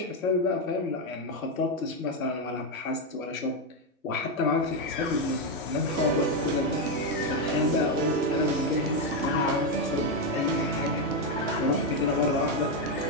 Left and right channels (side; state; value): both; normal; correlation 0.05